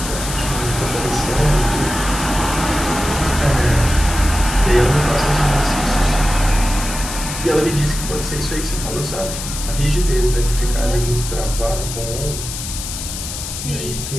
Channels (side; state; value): left; noise; hiss, 7 dB below the sound